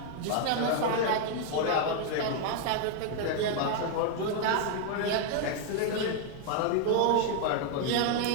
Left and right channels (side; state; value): both; different; correlation 0.00